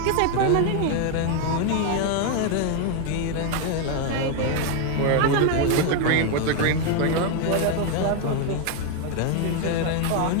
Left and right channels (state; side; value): different; both; correlation 0.01